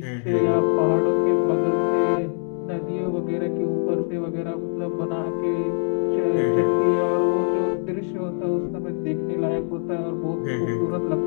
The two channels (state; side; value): silent; right; 57 dB below the other